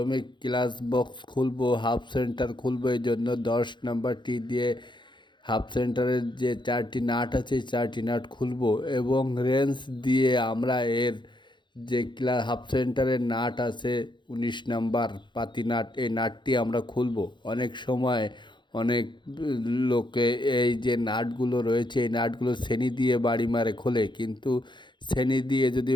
ক্লাচ বক্স খুলবো, হাফ সেন্টার খুলবো। এই জন্য 10 নাম্বারটি দিয়ে হাফ সেন্টারের যে 4টি নাট আছে, 4টি নাট খুলবো এবং রেঞ্চ দিয়ে আমরা এর যে হাফ সেন্টারের নাট আছে 19 নাম্বার পাতি নাট, এই নাটটি আমরা খুলবো। অনেক সময় অনেক লোকে এই যে নাটগুলো রয়েছে, এই নাটগুলো ছেনি দিয়ে বাড়ি মারে খোলে, কিন্তু ছেনি দিয়ে যদি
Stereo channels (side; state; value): right; late; 0.23 ms